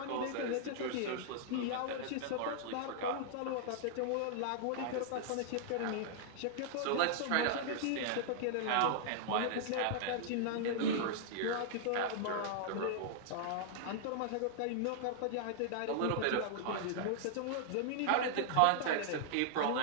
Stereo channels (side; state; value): both; different; correlation -0.01